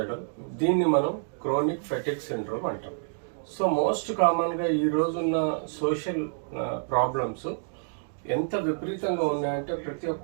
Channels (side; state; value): left; silent; digital silence